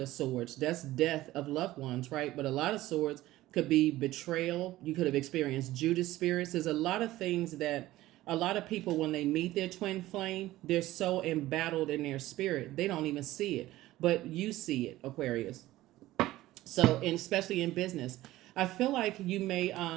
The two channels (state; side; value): quieter; left; 16.3 dB